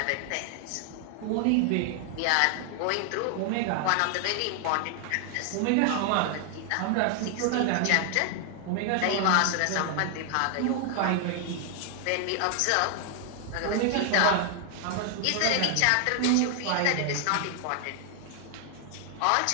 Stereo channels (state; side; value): different; both; correlation 0.00